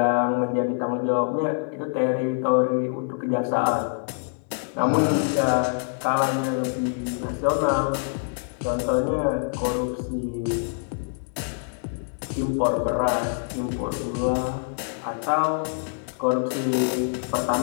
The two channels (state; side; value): silent; right; 62 dB below the other